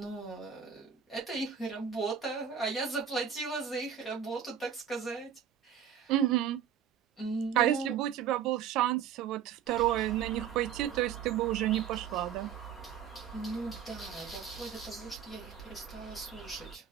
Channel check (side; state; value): left; quieter; 8.5 dB